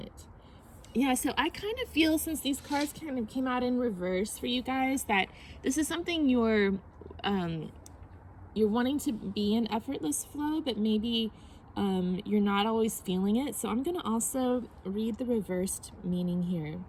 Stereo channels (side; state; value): both; identical; correlation 1.00